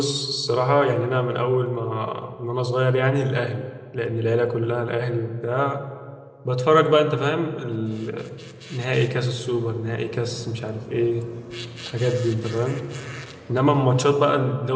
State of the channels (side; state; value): both; identical; correlation 1.00